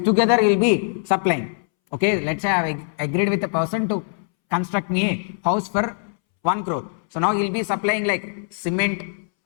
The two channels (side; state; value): right; silent; 64 dB below the other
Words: Together he will be supplying. Okay, let's say I have agreed with a person to construct me a house for 1 crore. So now he will be supplying like cement,